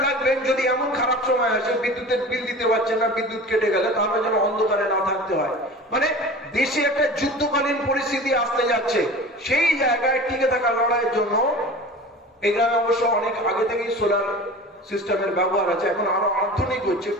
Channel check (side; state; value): both; normal; correlation 0.36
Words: রাখবেন, যদি এমন খারাপ সময় আসে বিদ্যুতের বিল দিতে পারছেন না, বিদ্যুৎ কেটে গেলে, তাহলে যেন অন্ধকারে না থাকতে হয়। মানে দেশে একটা যুদ্ধকালীন পরিস্থিতি আসতে যাচ্ছে, সেই জায়গায় টিকে থাকা লড়াইয়ের জন্য এই গ্রামে অবশ্য অনেক আগে থেকেই সোলার সিস্টেমের ব্যবহার আছে, এখন আরো আধুনিক হচ্ছে,